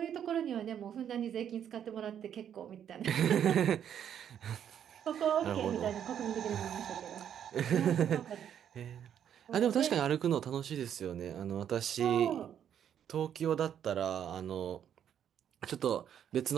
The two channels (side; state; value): left; quieter; 9.3 dB